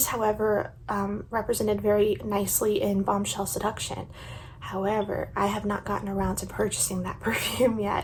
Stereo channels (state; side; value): identical; both; correlation 1.00